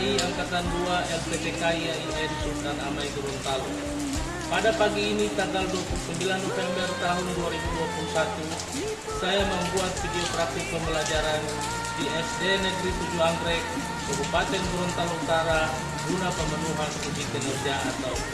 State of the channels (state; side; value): identical; both; correlation 1.00